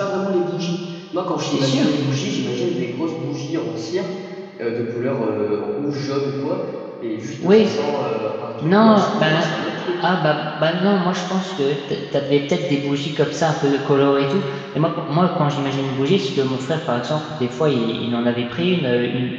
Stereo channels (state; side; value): identical; both; correlation 1.00